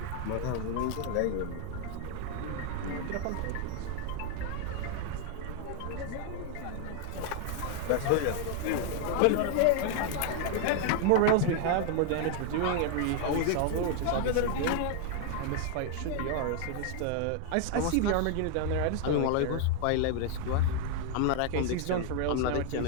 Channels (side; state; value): both; different; correlation 0.00